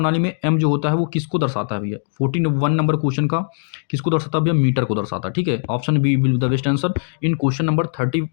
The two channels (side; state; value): right; silent; digital silence